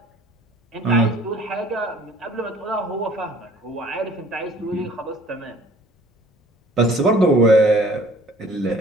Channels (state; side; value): normal; both; correlation 0.52